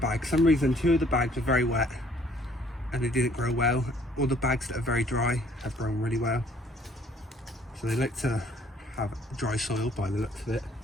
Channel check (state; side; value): normal; both; correlation 0.60